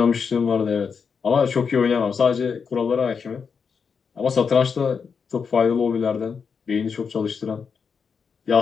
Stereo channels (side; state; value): right; quieter; 6.0 dB